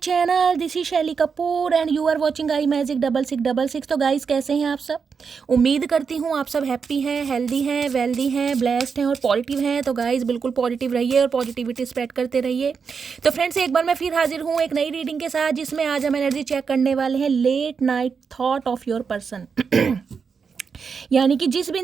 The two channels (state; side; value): quieter; left; 5.8 dB